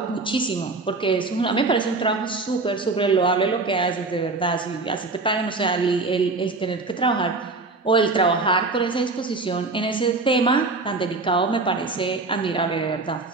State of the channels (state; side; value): quieter; left; 3.6 dB